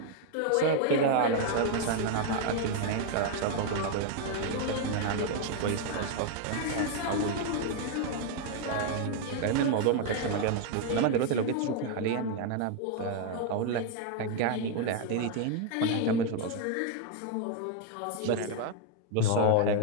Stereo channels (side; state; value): both; different; correlation 0.00